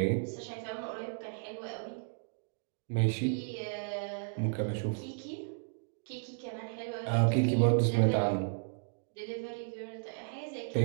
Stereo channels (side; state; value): left; silent; digital silence